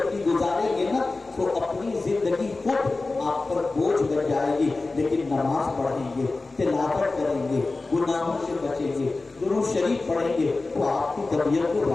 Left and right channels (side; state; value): right; quieter; 3.5 dB